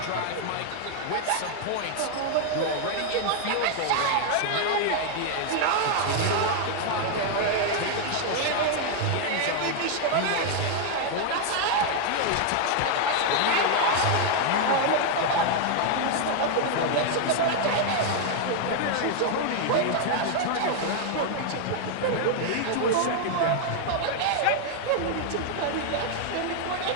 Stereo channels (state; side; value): different; both; correlation 0.00